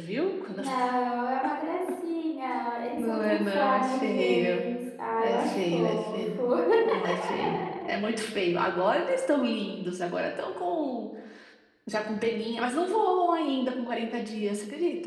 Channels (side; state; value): both; identical; correlation 1.00